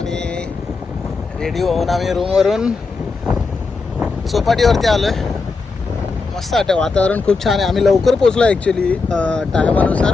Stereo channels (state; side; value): quieter; right; 4.2 dB